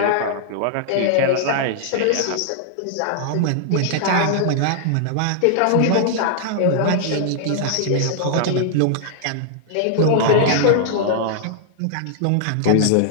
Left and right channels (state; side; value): different; both; correlation -0.01